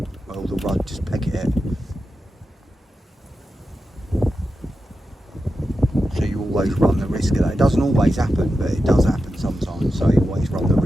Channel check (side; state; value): both; normal; correlation 0.90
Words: Well, the rod just peck it. always run the risk of that. It doesn't always happen, but it does happen sometimes, so you always run the